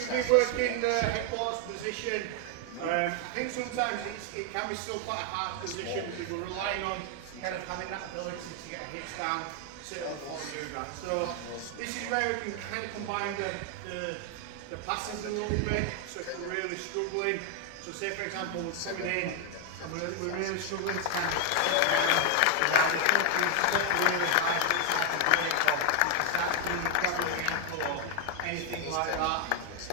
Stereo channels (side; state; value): both; different; correlation 0.00